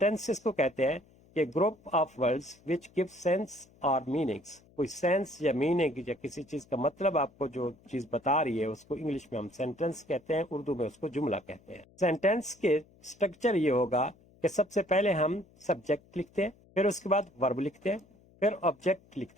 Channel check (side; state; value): left; noise; hum, 28 dB below the sound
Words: کو کہتے ہیں کہ group of words which give sense اور میننگس. کوئی سینس یا میننگ یا کسی چیز کا مطلب آپ کو جو چیز بتا رہی ہے اس کو انگلش میں ہم سینٹینس کہتے ہیں، اردو میں اس کو جملہ کہتے ہیں. سینٹینس کے اسٹرکچر یہ ہوگا کہ سب سے پہلے ہم سبجیکٹ لکھتے ہیں، پھر اس کے بعد ورب لکھتے ہیں، پھر آبجیکٹ